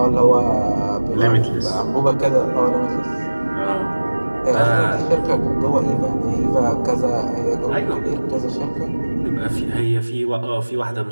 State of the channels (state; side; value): inverted; both; correlation -1.00